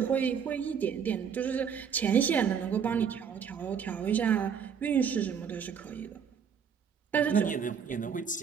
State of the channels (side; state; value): left; quieter; 7.2 dB